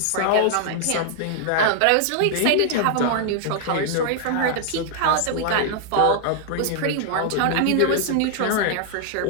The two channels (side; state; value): both; different; correlation -0.01